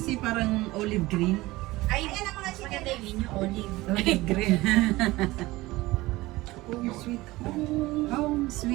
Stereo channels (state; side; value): quieter; left; 19.4 dB